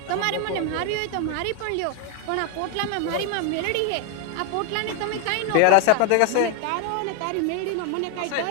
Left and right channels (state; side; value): different; both; correlation 0.01